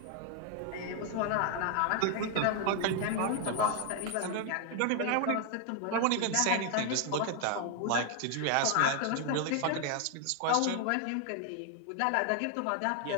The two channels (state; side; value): different; both; correlation 0.00